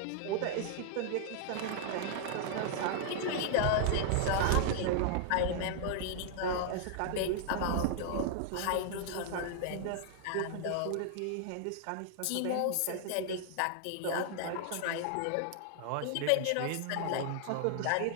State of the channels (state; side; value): different; both; correlation -0.01